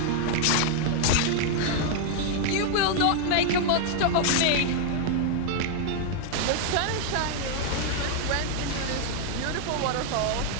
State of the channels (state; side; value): different; both; correlation 0.00